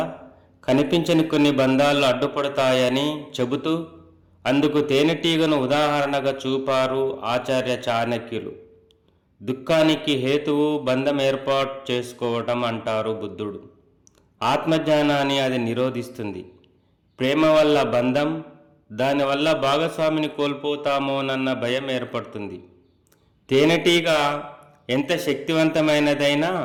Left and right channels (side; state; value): both; identical; correlation 1.00